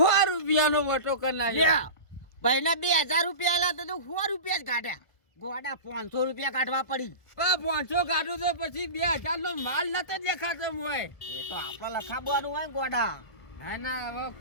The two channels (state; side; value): late; right; 1.5 ms